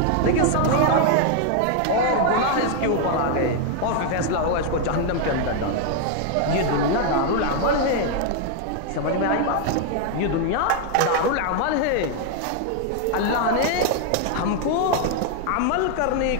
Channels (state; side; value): different; both; correlation 0.00